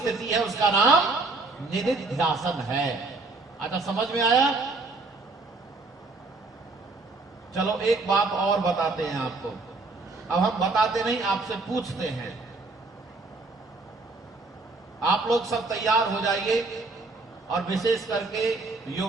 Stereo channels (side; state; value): left; quieter; 3.5 dB